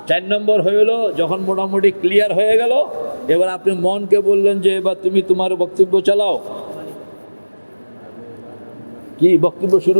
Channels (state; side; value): inverted; both; correlation -1.00